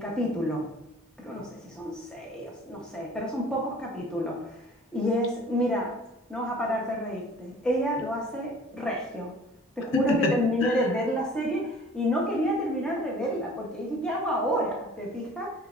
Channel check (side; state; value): both; normal; correlation 0.49